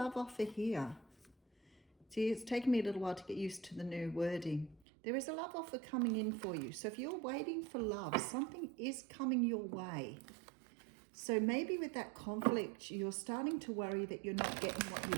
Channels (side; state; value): left; drops out; at 4.8 s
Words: offer here. See, it's taken me a little while to get used to the new wording. There is a love offer coming in for you. So if you're waiting for love, something is coming your way. So maybe with that conflict, you're starting to worry that you're not getting what you